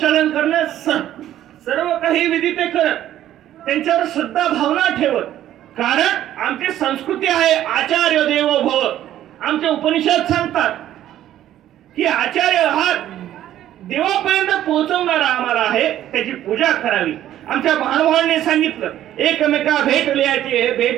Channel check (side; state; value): left; quieter; 12.3 dB